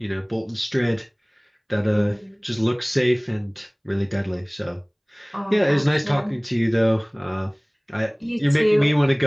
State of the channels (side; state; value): both; identical; correlation 1.00